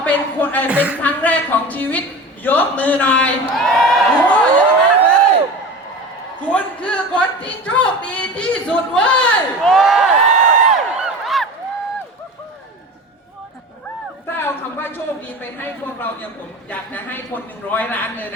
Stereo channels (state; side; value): normal; both; correlation 0.33